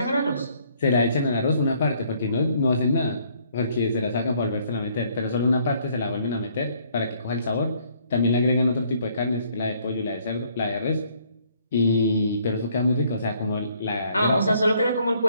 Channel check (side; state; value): both; inverted; correlation -0.65